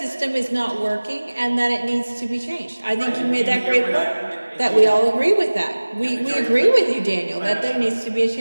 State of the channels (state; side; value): inverted; both; correlation -1.00